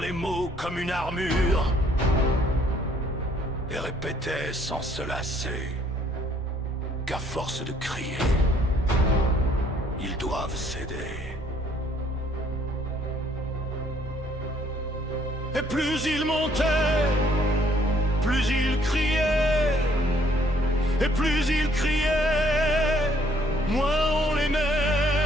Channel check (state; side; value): normal; both; correlation 0.65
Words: mots comme une armure, et répétait sans se lasser qu'à force de crier, ils doivent céder. Et plus il montait, plus il criait, et plus il criait, moins on l'aimait.